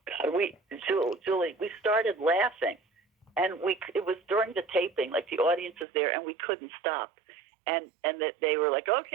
God, Julie, we started laughing, and it was during the taping, like the audience was there, and we couldn't stop. And that they were like,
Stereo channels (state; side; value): drops out; left; at 5.9 s